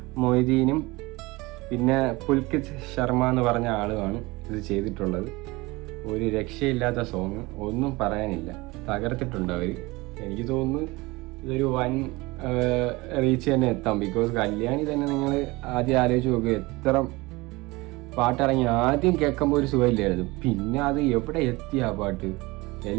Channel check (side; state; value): left; quieter; 22.5 dB